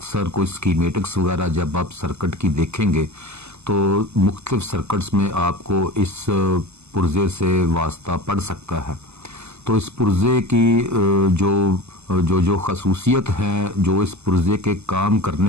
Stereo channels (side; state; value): left; late; 0.81 ms